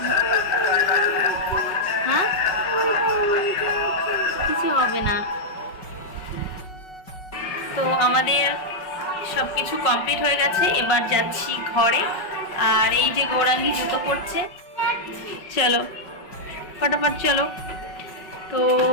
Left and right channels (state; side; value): late; right; 5.4 ms